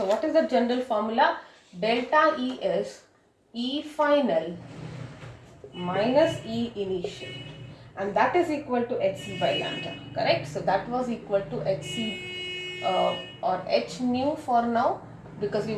what is the general formula? Delta E is E final minus E initial, and that is equal to Hc by lambda, correct? So that was equal to Hc or H nu for now, because we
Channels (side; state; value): both; identical; correlation 1.00